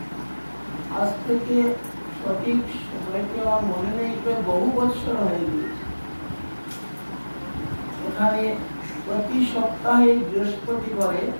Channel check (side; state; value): both; inverted; correlation -1.00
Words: আজ থেকে সঠিক সময়টি আমার মনে নেই, বহু বছর হয়ে গিয়েছে। এখানে প্রতি সপ্তাহে বৃহস্পতিবারে